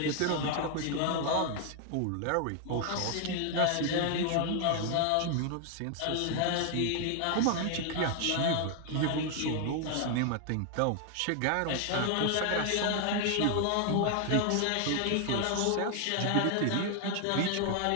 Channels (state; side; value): different; both; correlation 0.00